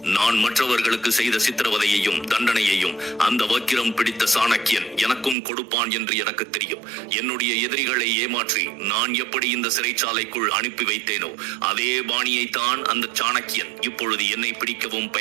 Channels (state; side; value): drops out; left; at 5.4 s